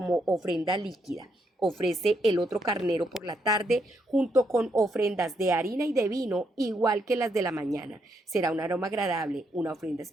ofrenda líquida. Ofrece el otro carnero por la tarde junto con ofrendas de harina y de vino igual que las de la mañana. Será un aroma agradable, una ofrenda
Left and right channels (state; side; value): normal; both; correlation 0.77